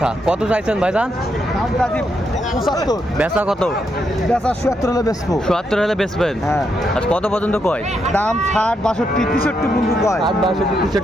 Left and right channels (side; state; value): both; normal; correlation 0.80